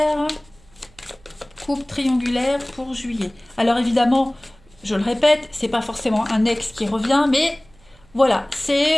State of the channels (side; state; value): right; noise; hum, 29 dB below the sound